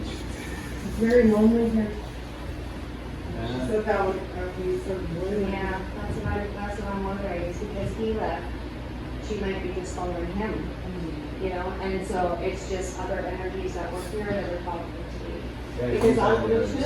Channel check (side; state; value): both; identical; correlation 1.00